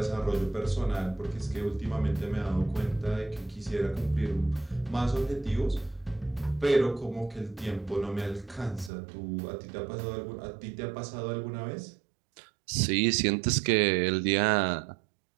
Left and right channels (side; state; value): left; drops out; at 8.9 s